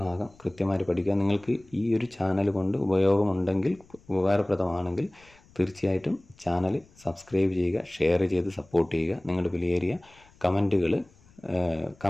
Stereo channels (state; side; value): noise; left; rumble, 28 dB below the sound